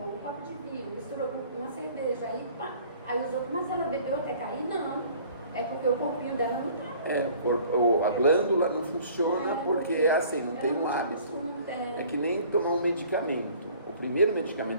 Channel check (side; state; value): both; inverted; correlation -0.52